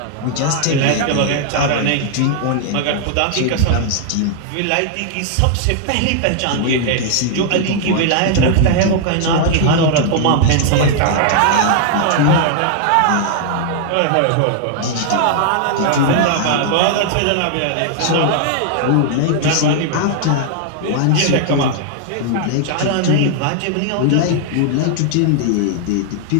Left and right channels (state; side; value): different; both; correlation 0.00